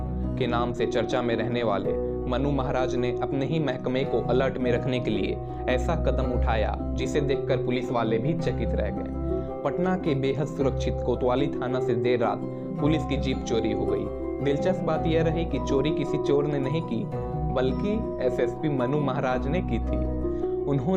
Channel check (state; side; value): identical; both; correlation 1.00